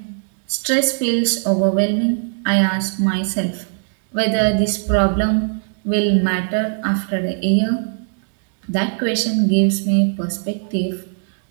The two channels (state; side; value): silent; left; digital silence